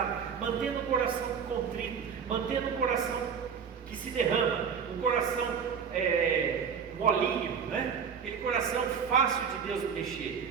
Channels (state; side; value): quieter; left; 6.8 dB